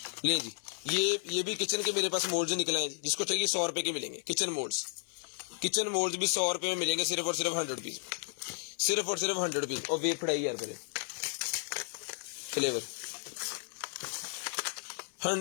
ले जी ये भी किचन के मेरे पास मोल्ड्स निकले हैं, जिसको चाहिए 100 रुपए के मिलेंगे। किचन मोल्ड्स भी 100 रुपए में मिलेंगे, सिर्फ और सिर्फ 100 रुपीज, सिर्फ और सिर्फ 100 रुपीज। और वेट पड़ाई यार करे फ्लेवर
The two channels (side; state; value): right; silent; 56 dB below the other